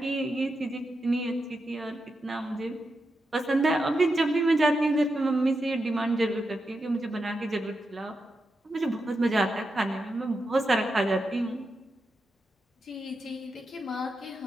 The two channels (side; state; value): both; normal; correlation 0.87